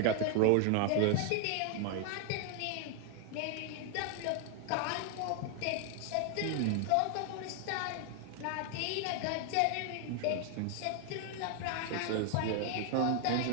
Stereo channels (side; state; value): both; different; correlation 0.00